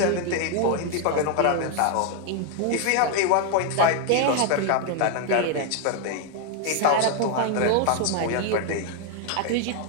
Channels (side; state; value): both; different; correlation 0.01